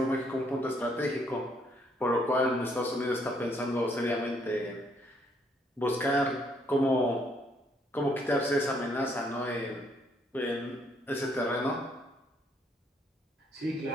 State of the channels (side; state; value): both; normal; correlation 0.69